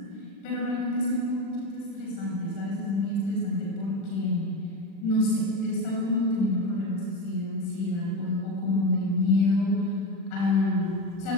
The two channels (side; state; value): right; late; 36 ms